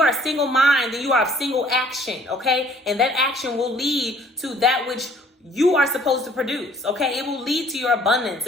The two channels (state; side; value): normal; both; correlation 0.57